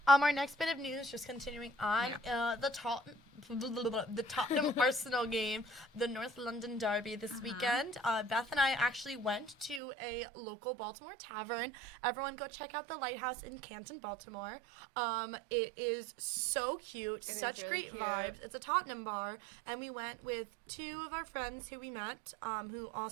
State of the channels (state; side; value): drops out; left; at 9.8 s